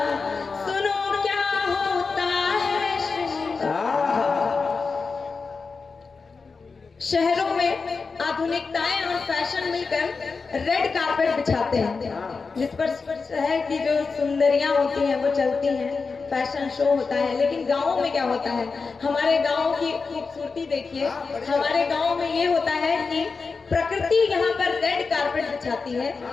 सुनो क्या होता है श्रृंगार। शहरों में आधुनिकताएं और फैशन मिलकर रेड कारपेट बिछाते हैं, जिस पर है कि जो सुंदरियां होती हैं वो चलती हैं, फैशन शो होता है। लेकिन गाँवों में क्या होता है, हमारे गाँव की खूबसूरती देखिए। हमारे गाँव में ये होता है कि प्रकृति यहाँ पर रेड कारपेट बिछाती है,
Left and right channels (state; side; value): quieter; right; 4.6 dB